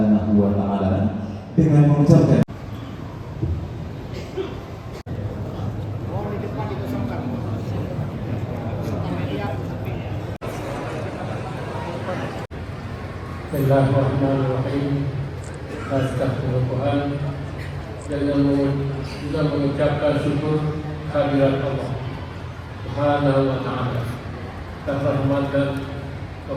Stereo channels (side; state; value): both; identical; correlation 1.00